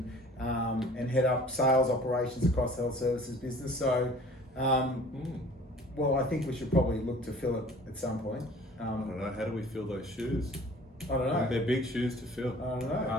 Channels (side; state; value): both; normal; correlation 0.48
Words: head up sales operations across the health services business. So, well, I think we should probably look to fill it at some point. I don't know, how do we fill those shoes? I don't know. They're big shoes to fill. I don't know.